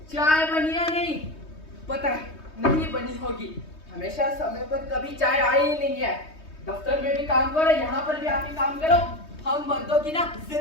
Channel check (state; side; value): late; right; 3.2 ms